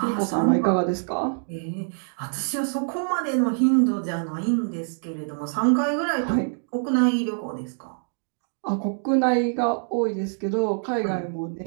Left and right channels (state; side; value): silent; left; digital silence